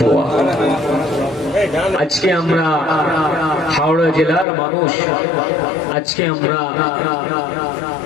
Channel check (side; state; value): right; drops out; at 4.5 s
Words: আজকে আমরা হাওড়া জেলার মানুষ, আজকে আমরা